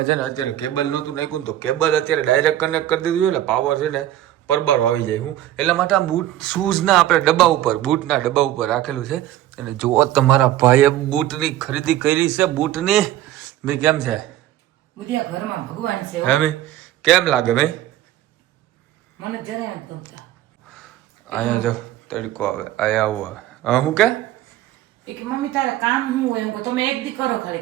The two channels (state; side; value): quieter; left; 13.4 dB